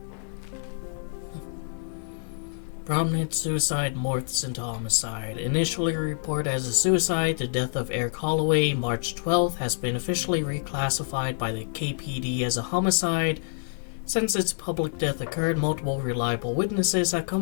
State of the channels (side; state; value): right; silent; digital silence